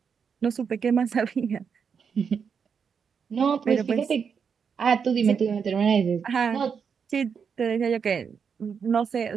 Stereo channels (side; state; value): left; quieter; 6.5 dB